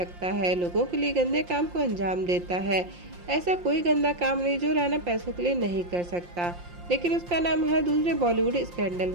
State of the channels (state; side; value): late; left; 5.7 ms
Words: है, लोगों के लिए गंदे काम को अंजाम देता है। ऐसा कोई गंदा काम नहीं जो राना पैसों के लिए नहीं कर सकता, लेकिन उसका नाम हर दूसरे बॉलीवुड स्कैंडल